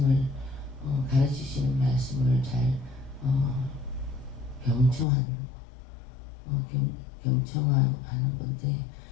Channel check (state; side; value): drops out; right; at 5.1 s